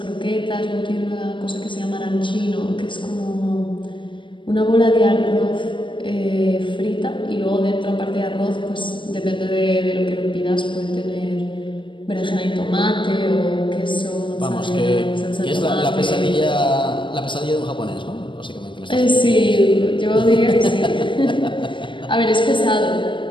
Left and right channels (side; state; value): right; late; 0.24 ms